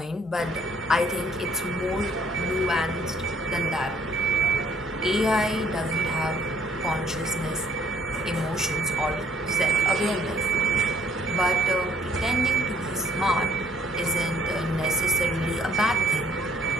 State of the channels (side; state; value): both; normal; correlation 0.61